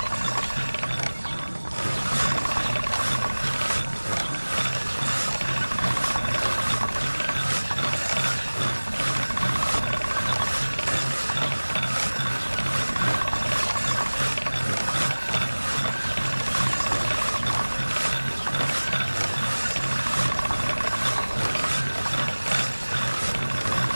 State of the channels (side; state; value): both; inverted; correlation -1.00